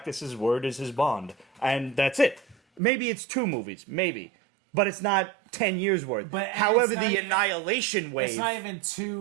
word is his bond. And that's it. Maybe it's 2 movies, maybe. But it's not 10 years worth. However, the Annihilation wave... It's not even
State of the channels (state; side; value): drops out; left; at 2.8 s